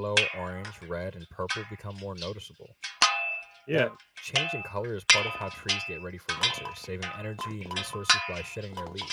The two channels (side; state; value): both; identical; correlation 1.00